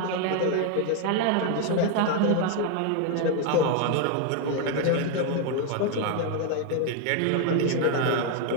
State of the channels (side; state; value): both; different; correlation 0.01